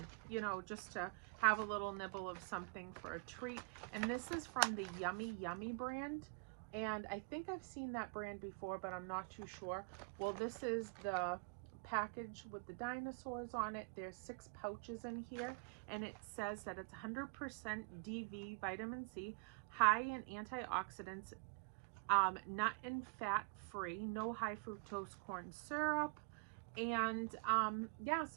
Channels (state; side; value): quieter; left; 34.0 dB